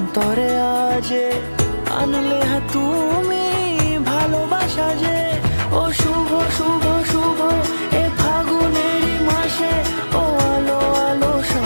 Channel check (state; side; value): inverted; both; correlation -1.00